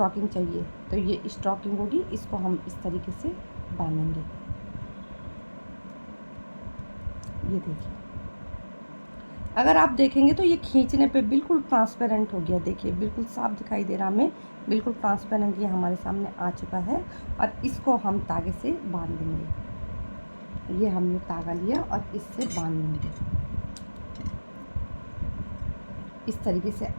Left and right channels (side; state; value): both; inverted; correlation -1.00